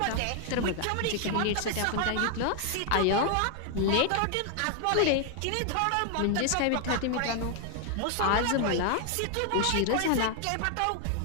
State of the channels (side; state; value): both; different; correlation 0.00